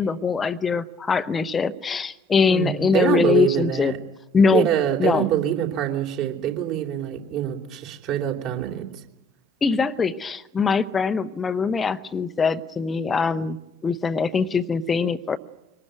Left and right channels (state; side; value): normal; both; correlation 0.63